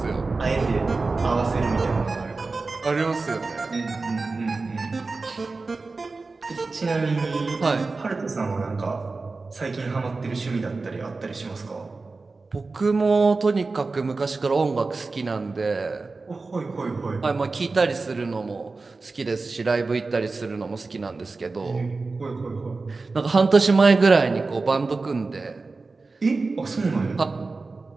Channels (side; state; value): left; quieter; 3.8 dB